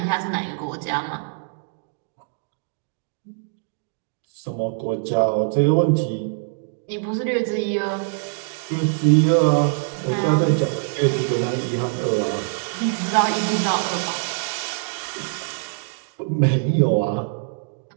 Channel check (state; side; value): silent; left; digital silence